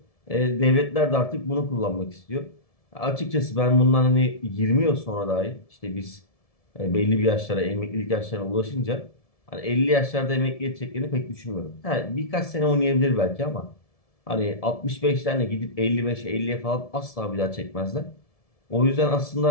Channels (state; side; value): late; right; 1.7 ms